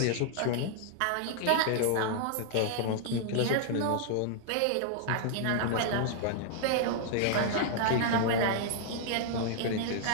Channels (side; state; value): both; different; correlation -0.01